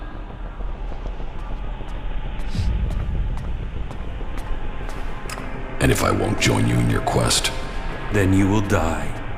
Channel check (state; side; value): identical; both; correlation 1.00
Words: And if I won't join you in your quest, Then you will die.